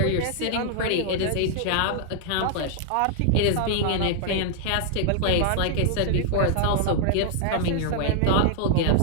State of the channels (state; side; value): different; both; correlation -0.01